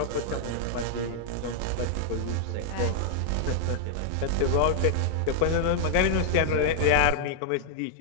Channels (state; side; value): different; both; correlation -0.01